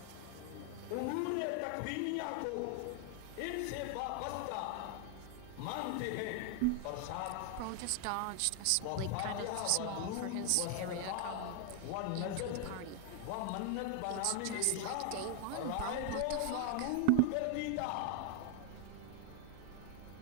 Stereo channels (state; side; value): different; both; correlation 0.00